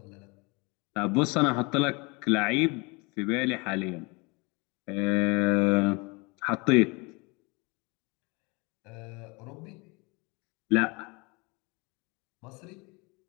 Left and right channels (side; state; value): right; quieter; 28.0 dB